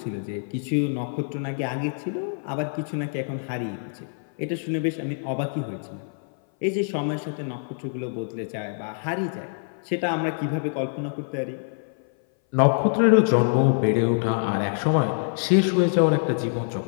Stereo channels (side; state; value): right; silent; 58 dB below the other